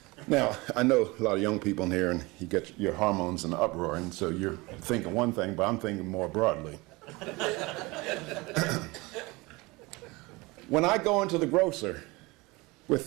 Now, I know a lot of young people in here, and you get your hormones in the uproar, and so you're thinking one thing, but I'm thinking more broadly. When I go into the grocer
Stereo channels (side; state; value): left; quieter; 23.7 dB